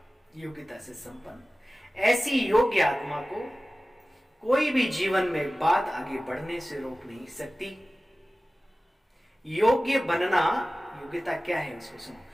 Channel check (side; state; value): both; normal; correlation 0.97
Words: योग्यता से संपन्न, ऐसी योग्य आत्मा को कोई भी जीवन में बात आगे बढ़ने से रोक नहीं सकती। योग्य बनना, योग्यता क्या है उसको